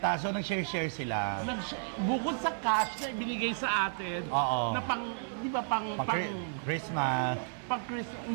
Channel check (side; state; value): left; silent; 56 dB below the other